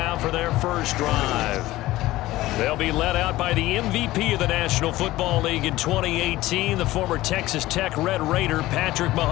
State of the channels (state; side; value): quieter; right; 17.0 dB